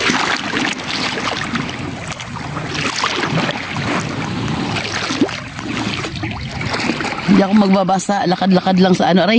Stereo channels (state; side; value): identical; both; correlation 1.00